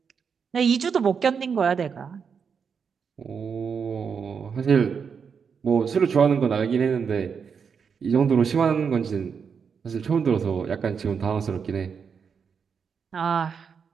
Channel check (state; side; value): quieter; left; 6.4 dB